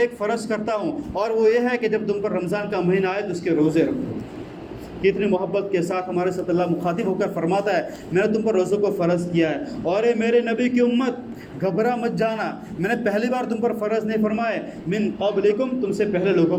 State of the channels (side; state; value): both; identical; correlation 1.00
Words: فرض کرتا ہوں، اور وہ یہ ہے کہ جب تم پر رمضان کا مہینہ آئے تو اس کے روزے رکھو۔ کتنی محبت کے ساتھ ہمارے ساتھ اللہ مخاطب ہو کر فرماتا ہے، میں نے تم پر روزوں کو فرض کیا ہے، اور اے میرے نبی کی امت گھبرا مت جانا، میں نے پہلی بار تم پر فرض نہیں فرمائے، من قبلکم، تم سے پہلے